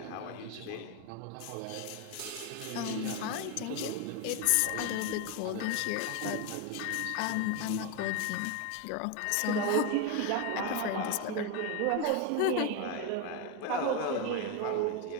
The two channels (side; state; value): both; different; correlation 0.02